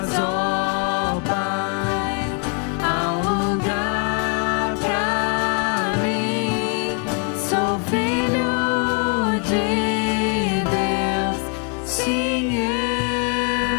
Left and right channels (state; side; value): quieter; right; 32.6 dB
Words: de Deus, sim,